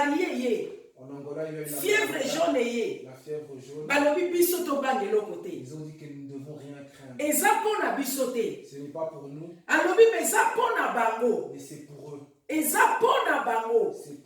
ye. En Angola, il y a eu la Fièvre jaune ye. La fièvre jaune. Balobi biso to bangelo côté. Ils ont dit que nous ne devons rien craindre. Eza pona biso te. Ce n'est pas pour nous, Alobi eza pona bango. mais c'est pour eux. Eza pona bango. C'est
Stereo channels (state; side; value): identical; both; correlation 1.00